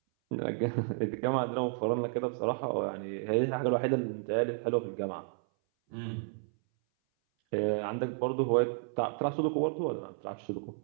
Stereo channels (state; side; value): silent; left; 56 dB below the other